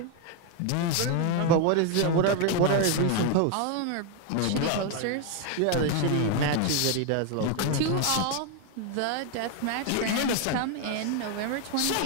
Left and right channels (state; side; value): different; both; correlation 0.01